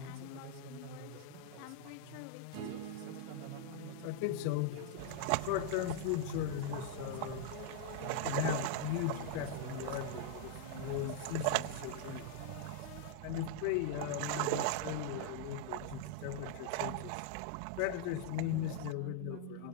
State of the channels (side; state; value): both; different; correlation 0.00